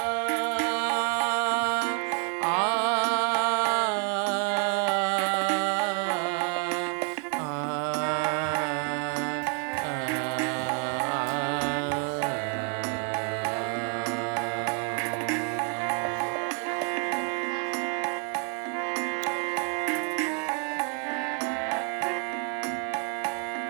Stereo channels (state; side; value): quieter; left; 38.9 dB